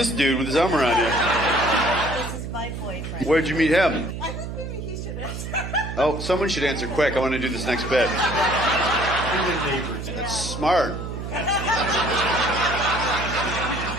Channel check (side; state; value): right; noise; hum, 7 dB below the sound